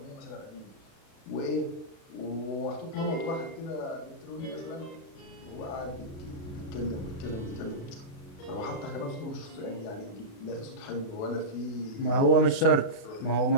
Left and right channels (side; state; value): right; late; 36 ms